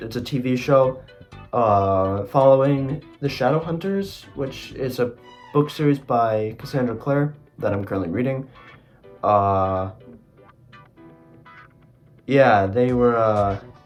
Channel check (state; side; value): identical; both; correlation 1.00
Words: a TV show following the Shadowhunters, which is a book series by Cassandra Clare that I'm currently reading. Yeah, they were